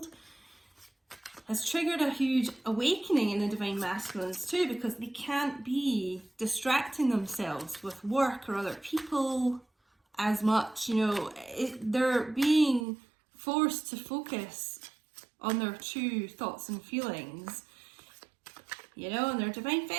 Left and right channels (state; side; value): drops out; left; at 12.9 s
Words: has triggered a huge awakening in the divine masculines too, because they can't be distracting themselves with work or other people as much. You know, they're being forced to focus on their true thoughts and feelings, you know, and their divine